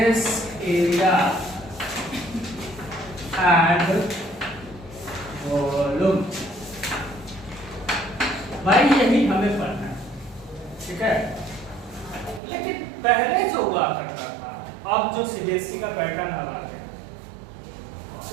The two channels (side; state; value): left; drops out; at 12.4 s